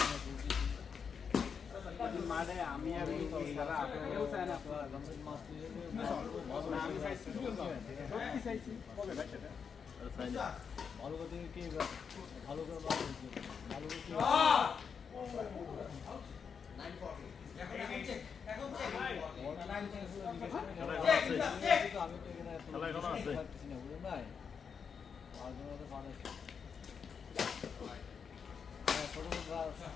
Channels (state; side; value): quieter; right; 6.4 dB